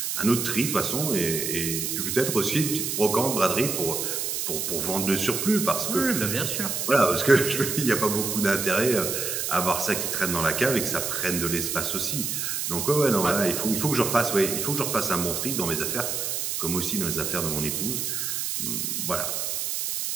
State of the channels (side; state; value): right; noise; hiss, 2 dB below the sound